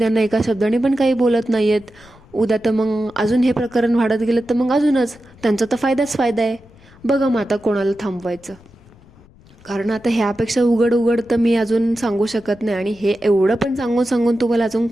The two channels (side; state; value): left; noise; rumble, 26 dB below the sound